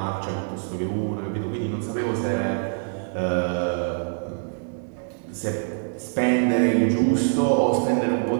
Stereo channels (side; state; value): left; silent; 62 dB below the other